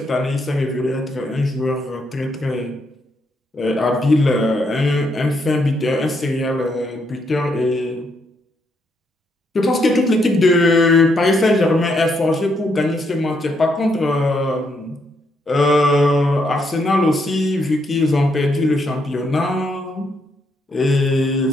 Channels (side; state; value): both; normal; correlation 0.76